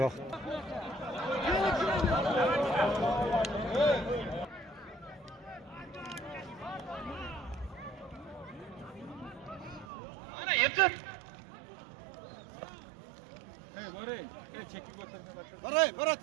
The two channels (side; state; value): left; drops out; at 9.9 s